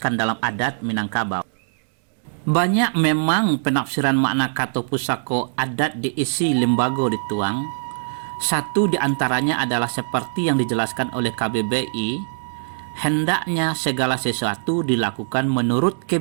dalam adat Minangkabau. Banyak memang penafsiran makna kata pusako adat diisi lembaga dituang. Satu di antaranya adalah seperti yang dijelaskan oleh KBBI, hendaknya segala sesuatu dilakukan menurut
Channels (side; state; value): left; silent; digital silence